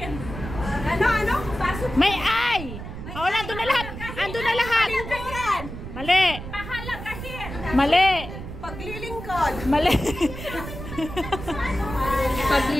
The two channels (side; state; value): right; noise; rumble, 9 dB below the sound